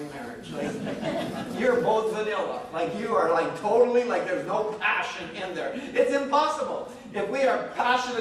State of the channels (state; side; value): identical; both; correlation 1.00